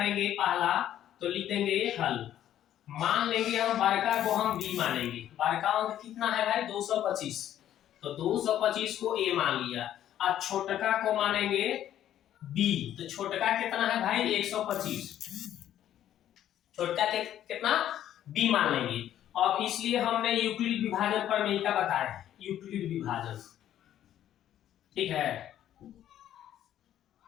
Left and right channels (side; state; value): right; quieter; 11.5 dB